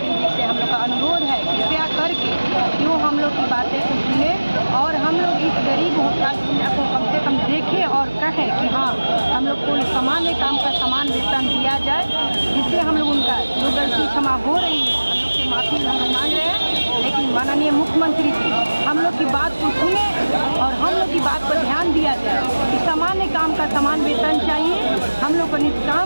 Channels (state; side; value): inverted; both; correlation -1.00